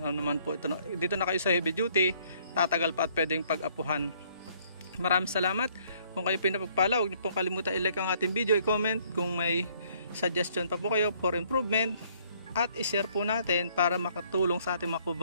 naman po ito. Dito na kayo sa heavy duty, tatagal pa at pwedeng pag-apuhan. Maraming salamat. Kung kayo pinapagpala, huwag niyo pong kalimutan i-like ang ating video, i-comment kung may suggestion pa po kayo for improvement, at i-share po natin para makatulong sa ating mga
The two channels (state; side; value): inverted; both; correlation -0.63